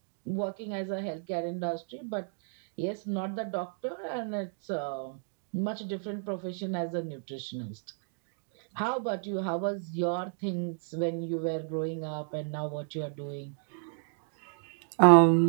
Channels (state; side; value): silent; left; digital silence